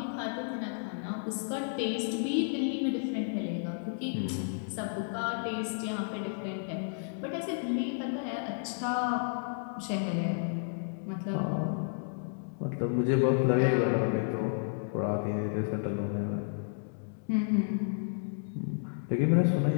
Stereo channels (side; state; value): right; silent; digital silence